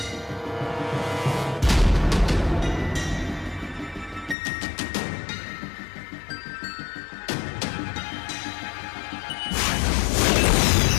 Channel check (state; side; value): drops out; right; at 4.4 s